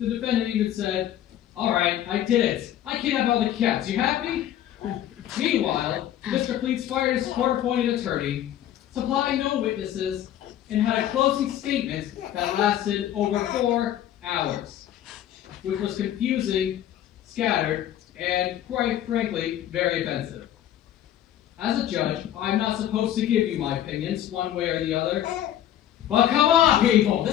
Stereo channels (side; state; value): right; quieter; 11.6 dB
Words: defendant even said, "All right, I did it. I kidnapped all the cats. You happy?" Meanwhile, Mr. Cleats fired his court-appointed attorney, supplied no witnesses, and had a closing statement that lasted over 4 hours, which was confusing, scattered, and, quite frankly, very offensive. As a judge, I'm not supposed to give you my opinions one way or the other. But come on, people!